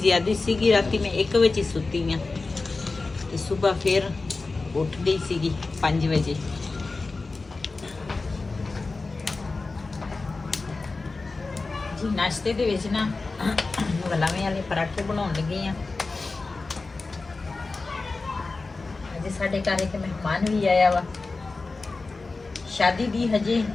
ज़्यादा सीगी, राती मैं 1 बजे सुती हाँ ते सुबह फिर उठ गई सीगी 5 बजे। जी नाश्ते दे विच ना गुलामी वाले पराठे बनाउण लगी हाँ। अज साडे घर एक मेहमान भी आया वा। शादी दी हजे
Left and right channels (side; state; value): right; quieter; 3.7 dB